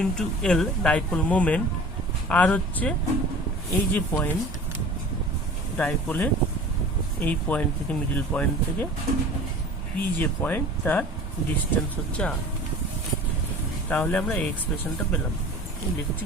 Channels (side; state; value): both; normal; correlation 0.41